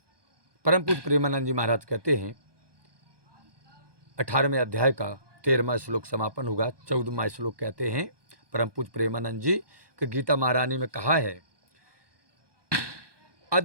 परम पूज्य प्रेमानंद जी महाराज कहते हैं 18वें अध्याय का 13वां श्लोक समापन होगा। 14वां श्लोक कहते हैं परम पूज्य प्रेमानंद जी कि गीता महारानी में कहा है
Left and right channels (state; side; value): late; left; 1.2 ms